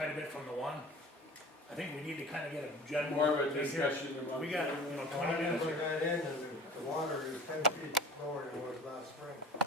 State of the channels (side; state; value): both; normal; correlation 0.43